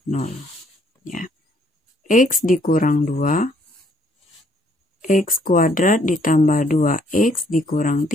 0. Ya. X dikurang 2. X kuadrat ditambah 2X dikurang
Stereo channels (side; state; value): both; normal; correlation 0.65